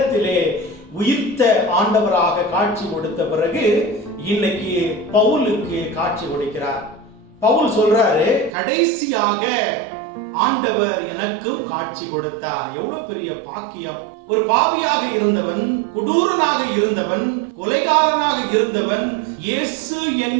உயிர்த்த ஆண்டவராக காட்சி கொடுத்த பிறகு இன்னைக்கு பவுலுக்கு காட்சி கொடுக்கிறார். பவுல் சொல்றாரு, கடைசியாக ஆண்டவர் எனக்கும் காட்சி கொடுத்தார். எவ்வளவு பெரிய பாக்கியம்! ஒரு பாவியாக இருந்தவன், கொடூரனாக இருந்தவன், கொலைகாரனாக இருந்தவன், இயேசு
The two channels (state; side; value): drops out; left; at 8.5 s